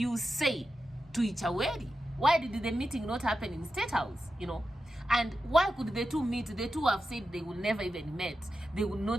say, to Ichaweri? Why did the meeting not happen in State House? You know, And why could the two meet? The two have said they will never even meet. They will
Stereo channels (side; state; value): both; normal; correlation 0.90